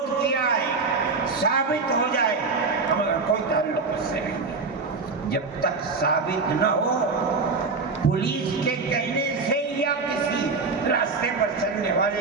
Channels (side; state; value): left; quieter; 4.3 dB